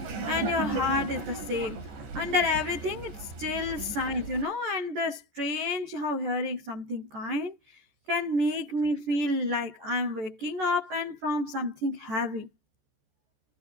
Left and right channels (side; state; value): left; late; 14 ms